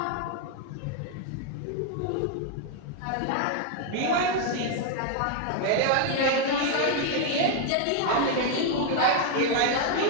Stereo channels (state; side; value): different; both; correlation 0.00